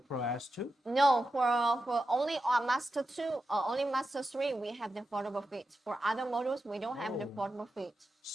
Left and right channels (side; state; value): both; normal; correlation 0.90